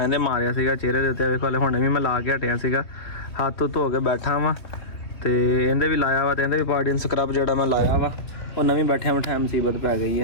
इहदे मारिया सीगा चेहरे दे उत्ते वेखो हले हुणे भी मैं ला के हटिया सीगा हत्थ धो के बैठा वां ते इहदे भी लाया वा ते इहदे भी पार्टिन स्क्रब जिहड़ा मैं लाया वा ओह नवीं बैठिया बैठाया मुसीबत पै गई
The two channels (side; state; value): right; late; 3.4 ms